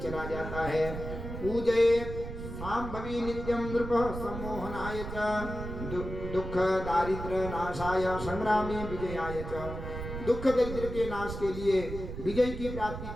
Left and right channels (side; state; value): right; noise; rumble, 8 dB below the sound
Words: चला जाता है। पूजयेत् सांभवी नित्यं नृप सम्मोहनाय च दुख दारिद्र्य नाशाय संग्रामे विजयाय च। दुख दरिद्र के नाश के लिए, विजय की प्राप्ति